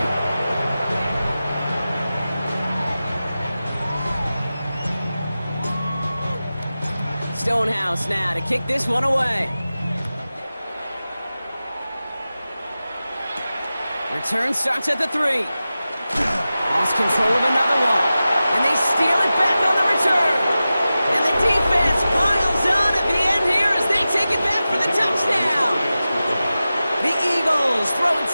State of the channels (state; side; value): inverted; both; correlation -0.95